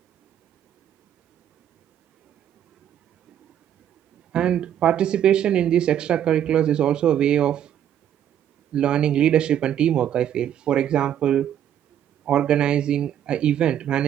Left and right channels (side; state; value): left; quieter; 10.2 dB